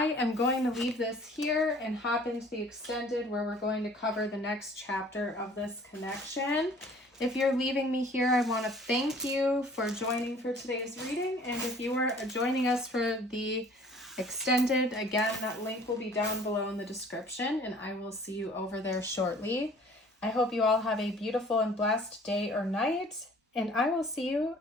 am going to leave this here and hop into the extended where we're going to cover the next chapter of this connection. If you're leaving me here, I want to thank you for joining for today's reading. And if you are joining us for the extended, again, that link will be down below in the description and I will see you over there shortly. I hope you all have a beautiful and blessed day or night and I will see you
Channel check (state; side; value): normal; both; correlation 0.52